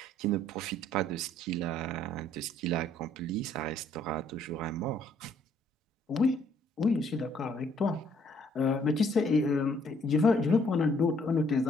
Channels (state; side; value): normal; both; correlation 0.64